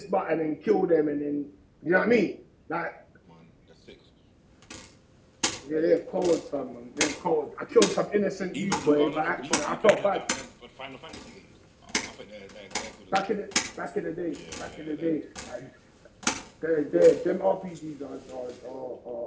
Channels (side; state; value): both; identical; correlation 1.00